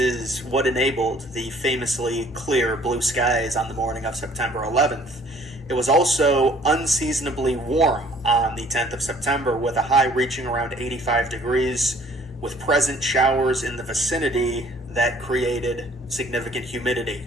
what enabled the famously clear blue skies on the morning of September 11th. It was also unseasonably warm on the 10th of September, with a high reaching around 85 degrees, with present showers in the vicinity that created significant humidity.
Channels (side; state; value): both; normal; correlation 0.57